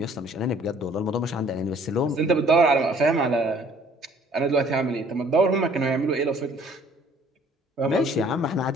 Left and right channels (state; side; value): normal; both; correlation 0.57